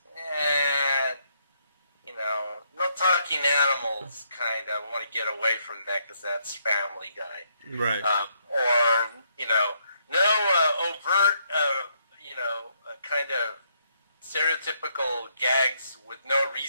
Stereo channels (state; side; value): inverted; both; correlation -0.74